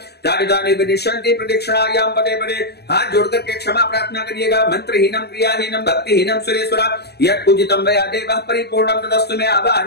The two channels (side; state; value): right; late; 0.48 ms